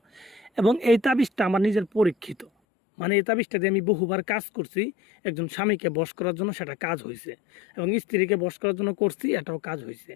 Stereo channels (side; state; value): right; drops out; at 2.5 s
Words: এবং এই তাবিজটা আমার নিজের পরীক্ষিত, মানে এই তাবিজটা দিয়ে আমি বহুবার কাজ করছি। একজন স্বামীকে বশ করার জন্য সেটা কাজ হয়েছে, এবং স্ত্রীকে বশ করার জন্য করছি, এটাও কাজ হয়েছে।